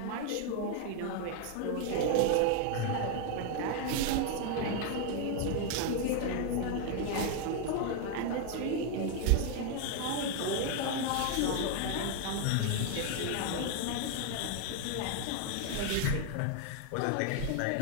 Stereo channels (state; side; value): different; both; correlation 0.00